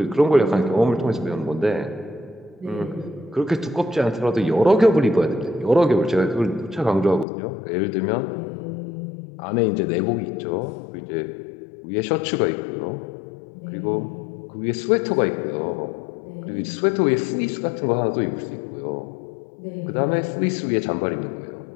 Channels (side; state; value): right; drops out; at 7.2 s